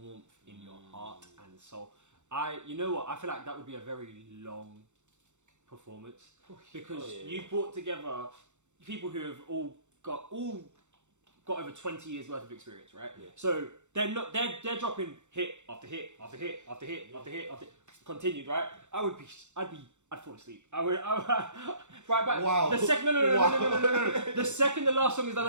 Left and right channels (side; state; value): left; late; 0.84 ms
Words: in your heart and soul. You know what? I feel like that would be a very long performance because you brought together people who have all got over 20 years worth of experience, right? Yeah. So they're dropping hit after hit after hit after hit after hit after continued, right? I'd fall asleep. I would right back. Wow. The second no. The second the last song is done,